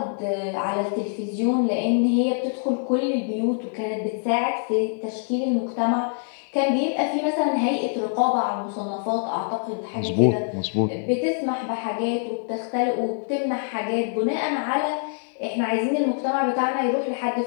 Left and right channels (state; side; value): silent; right; 62 dB below the other